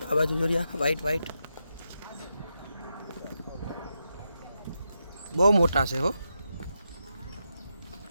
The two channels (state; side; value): inverted; both; correlation -0.86